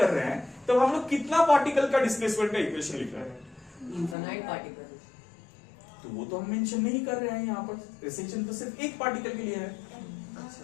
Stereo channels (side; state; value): right; drops out; at 4.2 s